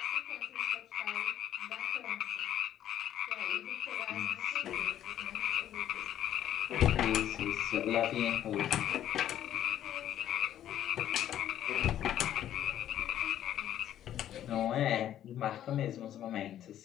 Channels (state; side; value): quieter; right; 11.4 dB